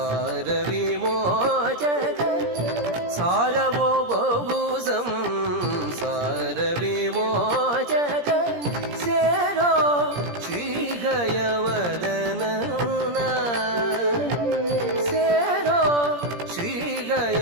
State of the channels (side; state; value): left; late; 17 ms